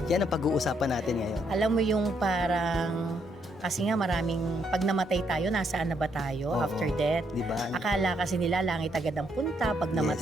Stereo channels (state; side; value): normal; both; correlation 0.74